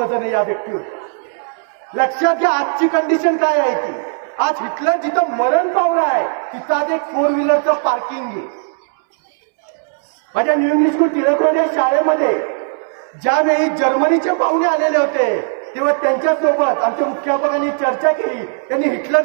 जण या व्यक्ती होते. लक्षात घ्या आजची कंडिशन काय आहे की आज हिटलर जिथं मरण पावला आहे तिथं आज एक 4 व्हीलरचं पार्किंग आहे. माझ्या new English school Tilak road या शाळेमध्ये ज्यावेळी जर्मनीचे पाहुणे आलेले होते तेव्हा त्यांच्यासोबत आमच्या मुख्याध्यापकांनी चर्चा केली. त्यांनी हिटलर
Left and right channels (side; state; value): left; silent; 68 dB below the other